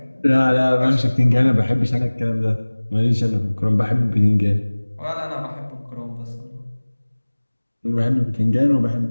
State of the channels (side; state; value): both; inverted; correlation -1.00